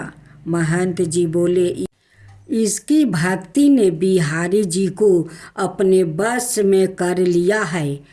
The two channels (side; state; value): both; identical; correlation 1.00